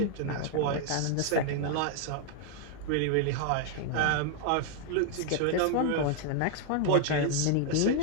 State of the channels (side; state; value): both; different; correlation 0.00